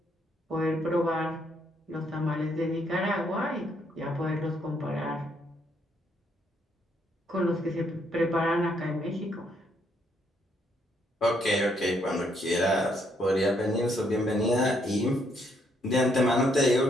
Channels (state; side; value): normal; both; correlation 0.72